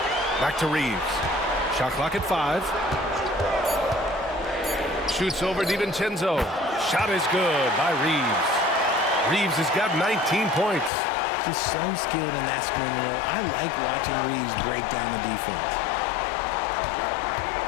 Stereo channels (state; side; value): drops out; right; at 10.9 s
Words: Back to Reeves. Shot clock at 5. Shoots over DiVincenzo. Shot is good by Reeves. Reeves has got 19 points. Just so skilled in that screen roll. I like watching Reeves break down the defense.